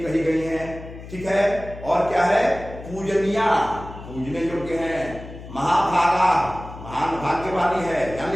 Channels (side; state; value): left; noise; hum, 14 dB below the sound